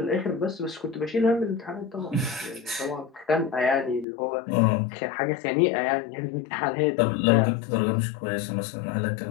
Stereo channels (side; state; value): right; drops out; at 4.0 s